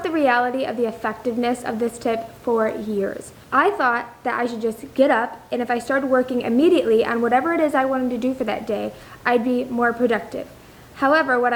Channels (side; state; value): both; identical; correlation 1.00